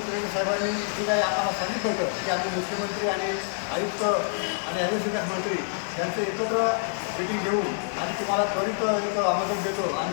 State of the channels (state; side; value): silent; right; digital silence